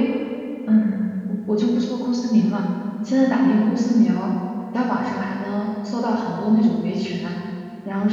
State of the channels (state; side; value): identical; both; correlation 1.00